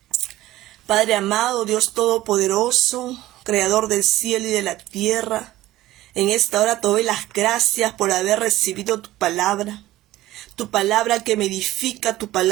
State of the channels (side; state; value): left; quieter; 15.8 dB